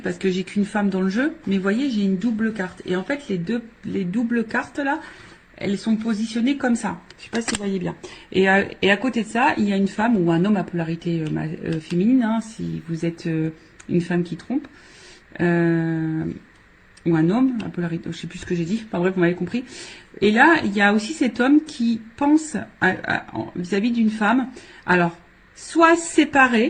parce que j'ai qu'une femme dans le jeu, mais vous voyez, j'ai une double carte. Et en fait, les doubles cartes là, elles sont positionnées comme ça. Je ne sais pas si vous voyez bien. Et à côté de ça, il y a une femme ou un homme à polarité féminine, hein, si vous êtes une femme qui trompe, ou un homme à polarité, je ne sais plus ce que j'ai dit, enfin bref, vous m'avez compris. Et là, il y a aussi cet homme qui pense vis-à-vis d'une femme, alors, soit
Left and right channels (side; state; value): both; identical; correlation 1.00